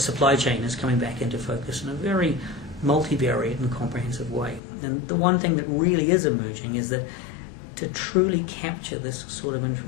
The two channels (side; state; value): right; drops out; at 4.6 s